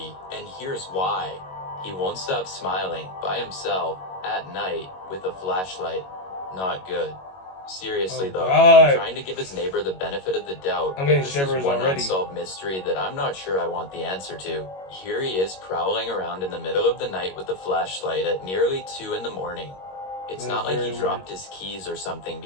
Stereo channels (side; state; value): right; late; 21 ms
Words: and here's why. He won't stop smiling by himself at night with a flashlight. Not good. Seriously though, God. trying to give his neighbor the benefit of the doubt. I'm getting This shivers is one already. unsolved mystery that I'm not sure I want the answer to. Here he is prowling around in the middle of the night with a flashlight at nearly 2 in the morning. It's not like he dropped his keys or something,